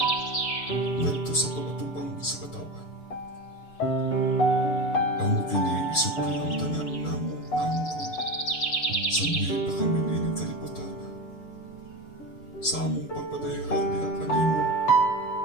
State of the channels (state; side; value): late; right; 6.8 ms